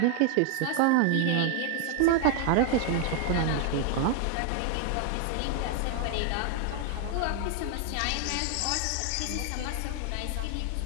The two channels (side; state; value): both; different; correlation 0.00